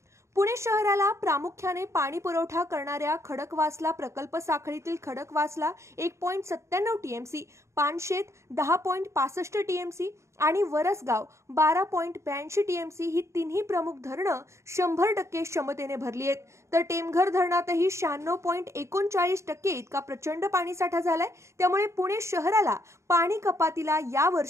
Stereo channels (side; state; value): left; late; 0.14 ms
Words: पुणे शहराला प्रामुख्याने पाणी पुरवठा करणाऱ्या खडकवासला प्रकल्प साखळीतील खडकवासला 1.97 टीएमसी, पानशेत 10.65 टीएमसी आणि वरसगाव 12.82 टीएमसी ही तिन्ही प्रमुख धरणं 100% क्षमतेने भरली आहेत. तर टेमघर धरणातही 96.39% इतका प्रचंड पाणीसाठा झालाय. त्यामुळे पुणे शहराला पाणी कपातीला